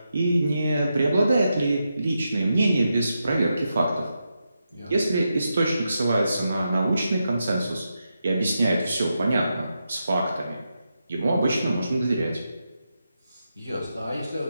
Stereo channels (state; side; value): inverted; both; correlation -0.87